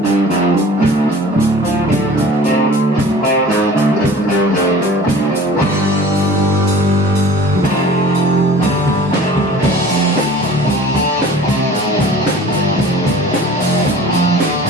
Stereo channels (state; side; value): normal; both; correlation 0.44